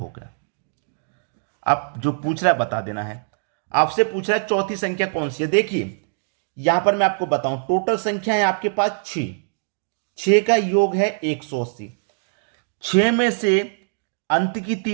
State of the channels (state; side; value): silent; left; digital silence